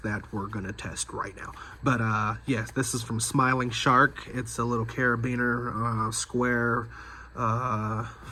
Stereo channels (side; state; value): both; identical; correlation 1.00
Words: that we're gonna test right now. But yes, this is from Smiling Shark. It's a little carabiner, square